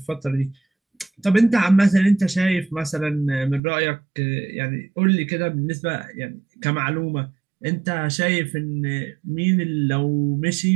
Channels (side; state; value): left; drops out; at 3.6 s